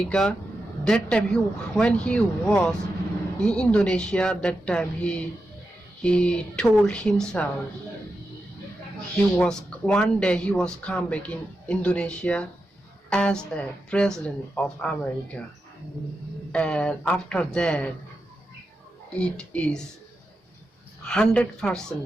That time when he was in Indonesia, that time he told himself one day he was come back in Indonesia as a president of America. And after that it is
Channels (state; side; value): normal; both; correlation 0.89